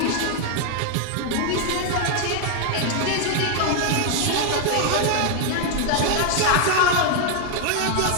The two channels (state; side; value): different; both; correlation 0.00